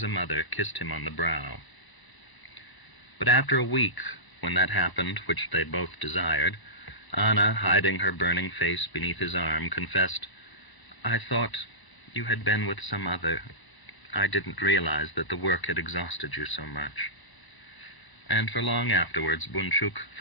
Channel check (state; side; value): late; right; 1.0 ms